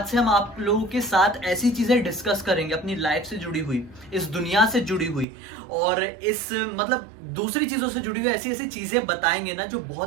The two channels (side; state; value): left; drops out; at 5.2 s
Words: से हम आप लोगों के साथ ऐसी चीजें डिस्कस करेंगे, अपनी लाइफ से जुड़ी हुई, इस दुनिया से जुड़ी हुई और इस दूसरी चीजों से जुड़ी हुई ऐसी ऐसी चीजें बताएंगे ना जो